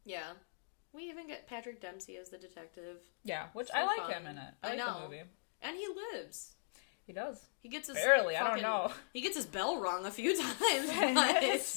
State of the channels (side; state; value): right; silent; digital silence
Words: Yeah. We even get Patrick Dempsey as the detective. Yeah, which So I like fun. him in it. I like the movie. And he lives. He does. He gets his barely. I don't know. He gets his bell rung a few times. His